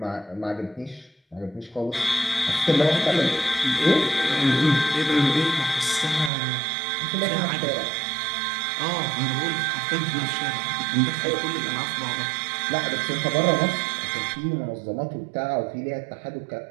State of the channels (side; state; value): left; drops out; at 6.3 s